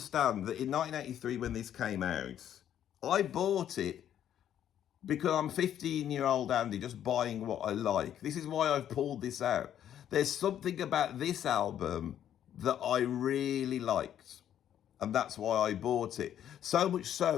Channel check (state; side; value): quieter; right; 10.3 dB